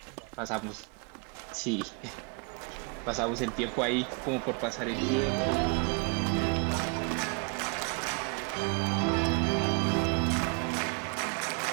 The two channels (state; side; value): quieter; left; 36.4 dB